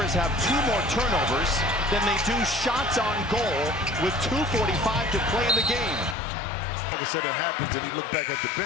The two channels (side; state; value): right; drops out; at 6.2 s